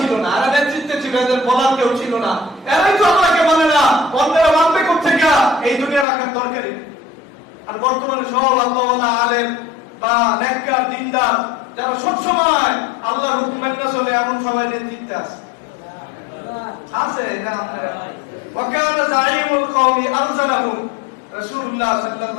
না, এরা নেতৃত্বে ছিল, এদের বলার কেউ ছিল না, এরাই তো আল্লাহকে মানে না, অন্যরা মানবে কোথেকে? এই দুনিয়া রাখার দরকারই। আর বর্তমানে সব আল্লাহওয়ালা আলেম বা নেককার দিনদার যারা সবসময় আল্লাহর হুকুম মেনে চলে, এমন সবাই নেতৃত্বে আছে আছে না? আপনারা ওয়াকানা যাইমুল কওমি আরজালাহুম, রাসূলুল্লাহ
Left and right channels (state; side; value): drops out; right; at 6.1 s